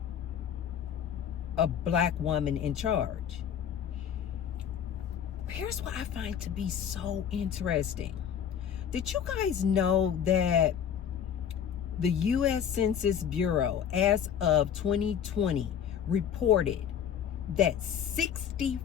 A black woman in charge. Here's what I find to be so interesting. Did you guys know that The U.S. Census Bureau, as of 2020, reported that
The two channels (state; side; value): quieter; right; 8.6 dB